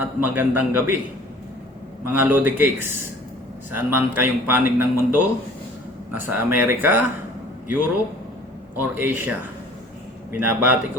magandang gabi, mga Lodi Cakes. Saan man kayong panig ng mundo, nasa Amerika, Europe, or Asia, binabati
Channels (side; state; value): both; normal; correlation 0.50